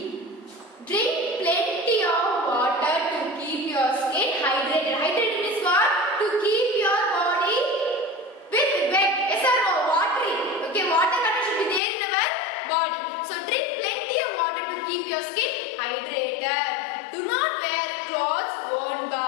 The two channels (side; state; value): right; drops out; at 11.8 s